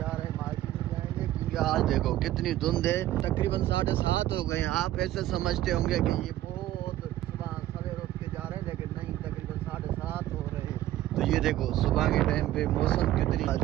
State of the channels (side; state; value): left; quieter; 14.2 dB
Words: रहे हैं, मार्केट में जाएंगे। क्योंकि आज देखो कितनी धुंध है, तकरीबन 7:30 हो गए। आप ऐसे समझते होंगे कि ये बहुत सुबह सवेरे उठ के जा रहे हैं, लेकिन नहीं, तकरीबन 7:30 हो रहे हैं। तो ये देखो सुबह के टाइम पे मौसम कितनी आ